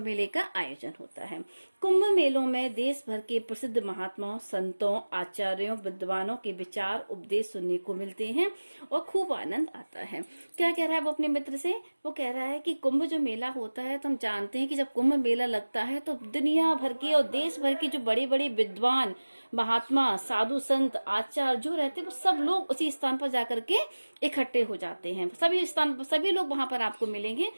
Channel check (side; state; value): both; inverted; correlation -1.00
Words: का आयोजन होता है। कुंभ मेलों में देश भर के प्रसिद्ध महात्माओं, संतों, आचार्यों, विद्वानों के विचार उपदेश सुनने को मिलते हैं और खूब आनंद आता है। क्या कह रहा है वो अपने मित्र से, वो कह रहा है कि कुंभ जो मेला होता है तो हम जानते हैं कि जब कुंभ मेला लगता है तो तो दुनिया भर के और देश भर के जो बड़े बड़े विद्वान, महात्मा, साधु, संत, आचार्य जो रहते हैं वो सब लोग उसी स्थान पर जाकर के इकट्ठे हो जाते हैं। सभी लोग वहां पर आपको मिलेंगे।